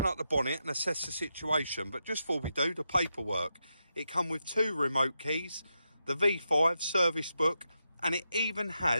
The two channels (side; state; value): both; inverted; correlation -0.86